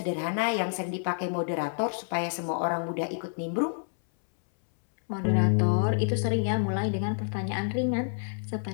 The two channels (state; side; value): silent; right; 59 dB below the other